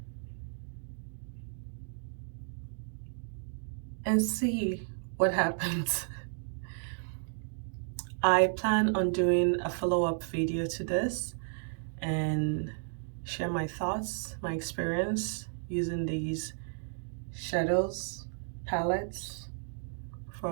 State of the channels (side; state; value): left; silent; digital silence